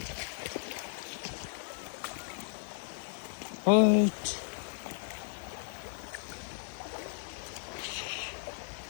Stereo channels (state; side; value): silent; right; digital silence